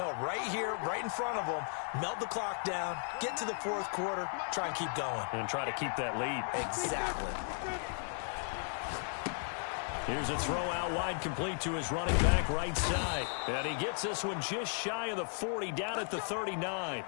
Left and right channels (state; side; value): silent; right; 54 dB below the other